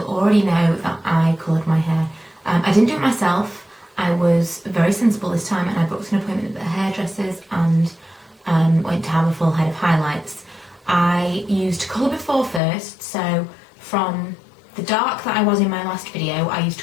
already know that I coloured my hair. I didn't do it myself. I was very sensible this time and I booked an appointment at the hairdressers and went to have a full head of highlights. I used Colour Before first, so from the dark that I was in my last video, I used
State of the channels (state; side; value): drops out; right; at 12.6 s